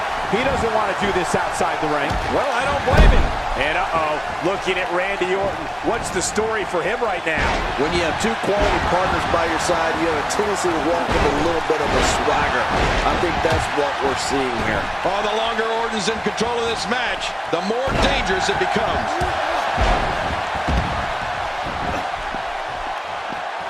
He doesn't want to do this outside the ring. Well, I don't blame him. And looking at Randy Orton, what's the story for him right now? When you have 2 quality partners by your side, you have a tendency to walk with a little bit of a swagger. I think that's what we're seeing here. Oh, the longer Orton's in control of this match, the more dangerous it becomes.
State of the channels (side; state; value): both; identical; correlation 1.00